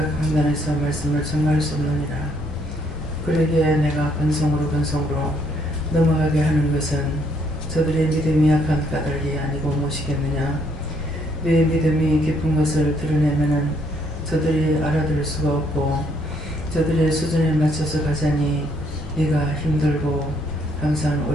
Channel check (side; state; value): both; normal; correlation 0.69